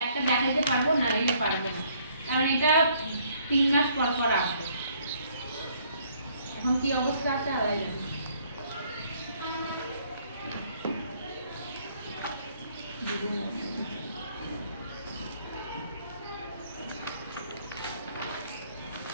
একটা দেখাইতে পারবো না, রেলে পারবো না, কারণ এটা 3 মাস পর পর আসবে। এখন কি অবস্থা আছে আল্লাহ জানে।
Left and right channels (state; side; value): inverted; both; correlation -0.64